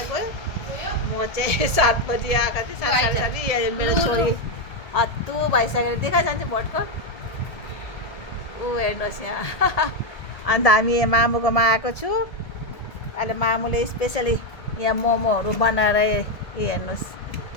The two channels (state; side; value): late; right; 1.7 ms